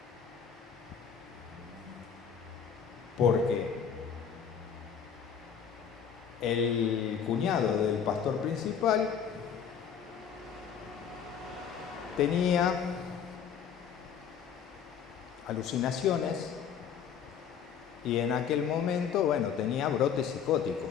Porque el cuñado del pastor principal tenía alucinaciones y en aquel momento, bueno, tenía brotes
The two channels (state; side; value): quieter; right; 7.6 dB